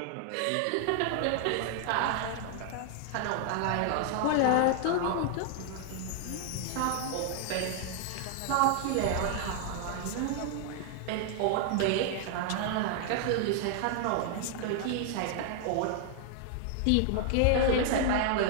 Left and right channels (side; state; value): both; different; correlation 0.00